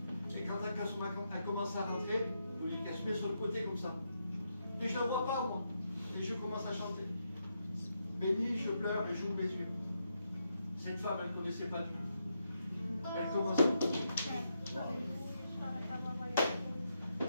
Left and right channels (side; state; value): both; inverted; correlation -0.82